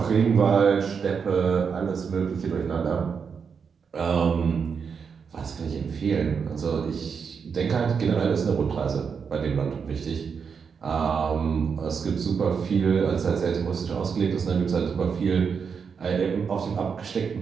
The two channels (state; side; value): quieter; left; 6.2 dB